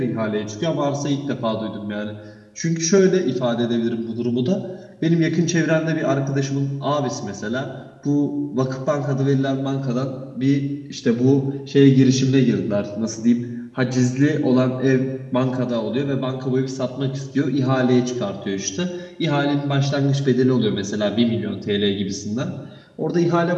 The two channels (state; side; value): identical; both; correlation 1.00